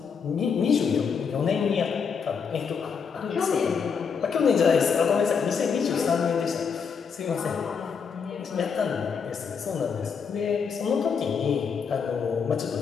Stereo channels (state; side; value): quieter; right; 6.2 dB